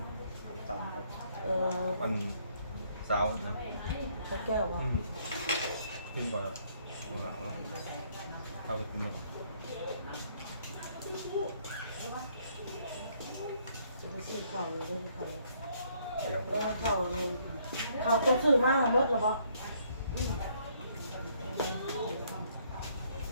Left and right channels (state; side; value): inverted; both; correlation -0.67